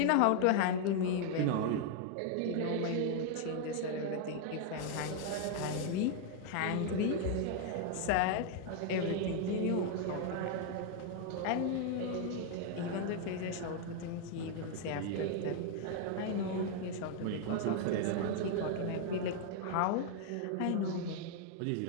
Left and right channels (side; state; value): both; different; correlation 0.00